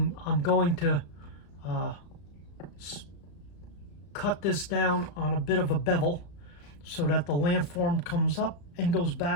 I'm going to cut this down on a bit of a bevel so that the landform comes up and goes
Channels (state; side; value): late; right; 34 ms